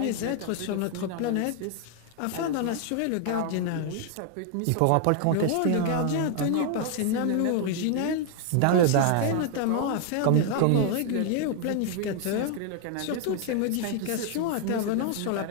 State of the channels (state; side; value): different; both; correlation 0.00